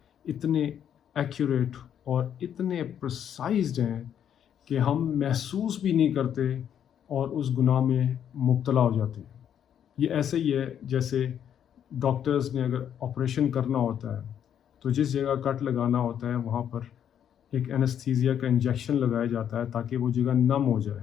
اتنے ایکوریٹ اور اتنے پرسائزڈ ہیں کہ ہم محسوس بھی نہیں کرتے اور اس گناہ میں مبتلا ہو جاتے ہیں۔ یہ ایسے ہی ہے جیسے ڈاکٹرز نے اگر آپریشن کرنا ہوتا ہے تو جس جگہ کٹ لگانا ہوتا ہے وہاں پر ایک اینستھیزیا کا انجیکشن لگایا جاتا ہے تاکہ وہ جگہ نم ہو جائے۔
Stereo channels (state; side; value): quieter; right; 9.2 dB